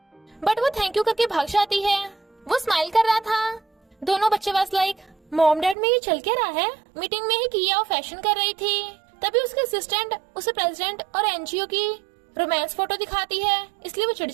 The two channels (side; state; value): left; drops out; at 5.8 s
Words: बट वो थैंक यू करके भाग जाती है। वो स्माइल कर रहा था। दोनों बच्चे वाज लाइक, मॉम डैड में ये चल क्या रहा है। मीटिंग में ही किया और फैशन कर रही थी। तभी उसके असिस्टेंट उसे प्रेसिडेंट और एनजीओ की रोमांस फोटो दिखाती है, इसलिए वो चिढ़